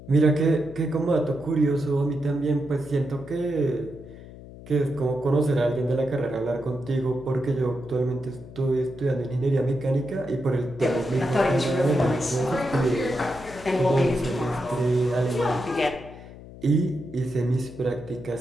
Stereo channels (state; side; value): noise; left; hum, 16 dB below the sound